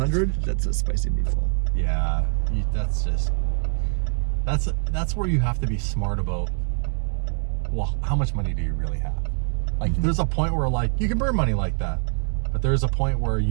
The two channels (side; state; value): left; silent; digital silence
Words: that's a spicy meatball. Yeah, that's where you have to be smart about, well, how much money do you really have? Like, there's a point where, like, you can burn money like that, but there's a point where